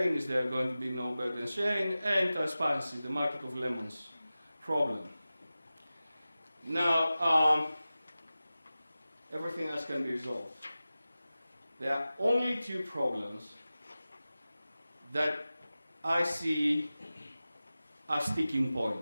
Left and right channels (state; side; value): inverted; both; correlation -0.96